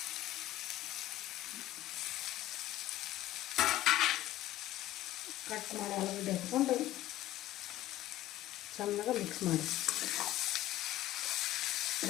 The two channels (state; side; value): quieter; right; 14.9 dB